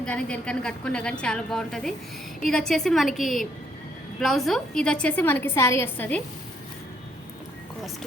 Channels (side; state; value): both; normal; correlation 0.70